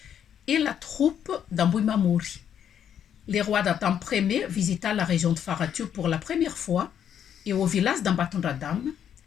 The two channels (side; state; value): right; quieter; 9.1 dB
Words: et la troupe d'Ambouimamori. Le roi d'Atam Ier visita la région de Faratur pour la première fois et au village d'Ambatondradam,